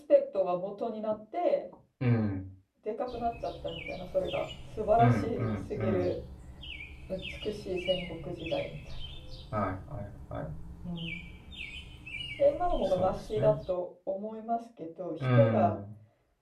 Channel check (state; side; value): identical; both; correlation 1.00